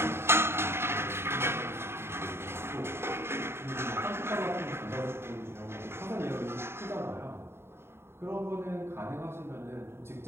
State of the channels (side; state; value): left; late; 0.12 ms